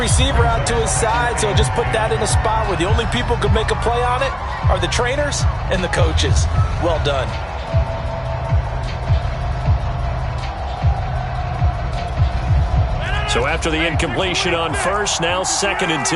out to his side, so just put that in a spot where the only people who can make a play on it are the trainers and the coaches. Well done. So after the incompletion on 1st, now 2nd and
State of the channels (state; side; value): identical; both; correlation 1.00